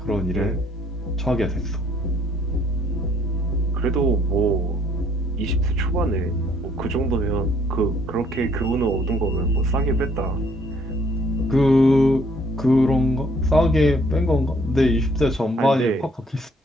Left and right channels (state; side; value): normal; both; correlation 0.63